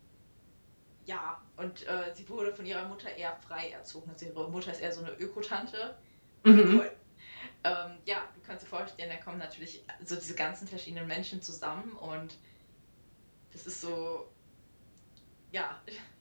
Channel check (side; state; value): both; inverted; correlation -1.00